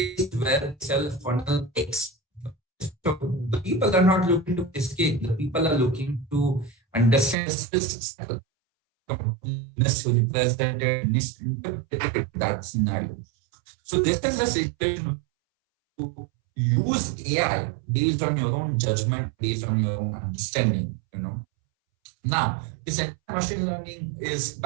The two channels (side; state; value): left; drops out; at 7.4 s